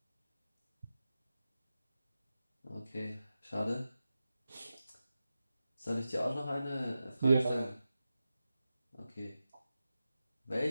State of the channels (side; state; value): both; inverted; correlation -0.92